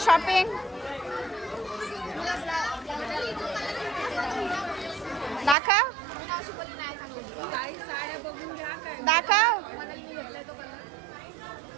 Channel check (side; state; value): left; drops out; at 5.6 s